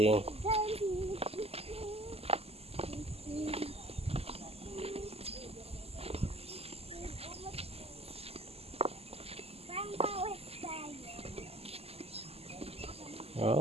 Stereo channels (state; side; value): late; left; 0.29 ms